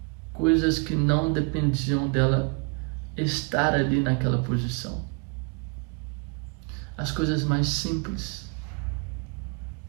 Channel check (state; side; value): quieter; left; 32.0 dB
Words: coisas que não dependiam dela estar ali naquela posição. As coisas mais simples,